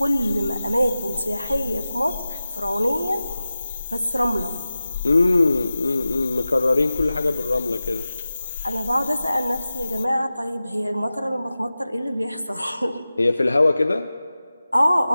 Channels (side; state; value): both; inverted; correlation -0.94